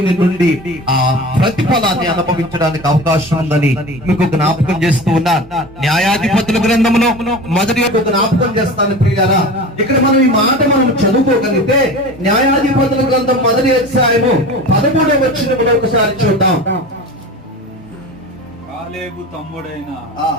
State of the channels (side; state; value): both; normal; correlation 0.34